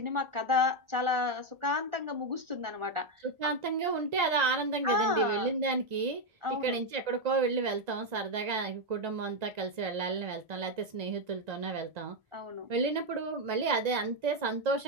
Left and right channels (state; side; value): late; left; 1.9 ms